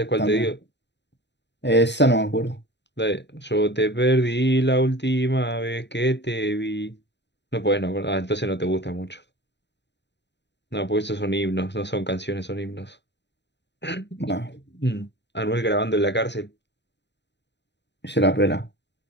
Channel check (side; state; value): right; late; 0.51 ms